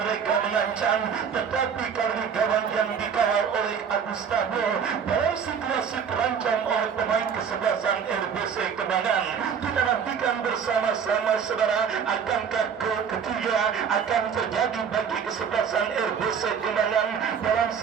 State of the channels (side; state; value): left; quieter; 7.1 dB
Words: mereka mengancam, tetapi kali ini gawang yang dikawal oleh Agustavo dalam situasi terancam oleh pemain kesebelasan RBC Kenangan. Kita nantikan bersama-sama saudara, akankah gol ketiga akan terjadi bagi kesebelasan RBC Kenangan dalam